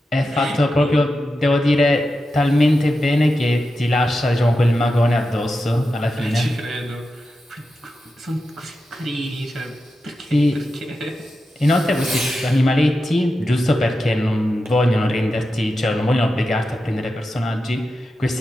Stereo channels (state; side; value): normal; both; correlation 0.90